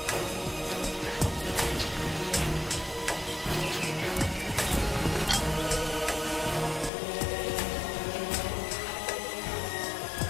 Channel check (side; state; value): right; drops out; at 6.9 s